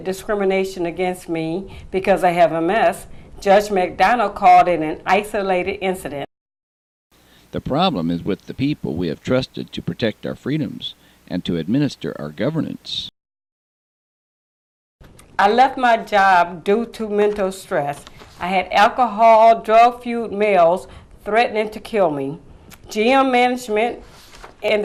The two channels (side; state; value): both; identical; correlation 1.00